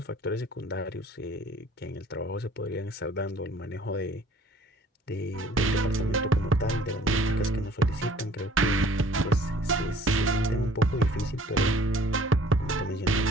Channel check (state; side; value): normal; both; correlation 0.53